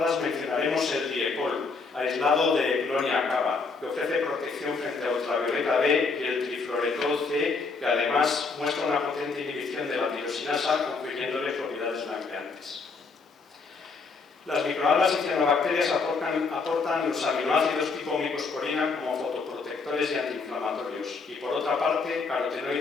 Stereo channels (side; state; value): right; quieter; 4.4 dB